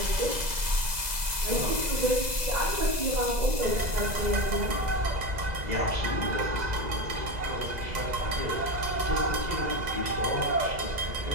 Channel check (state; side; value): late; left; 2.0 ms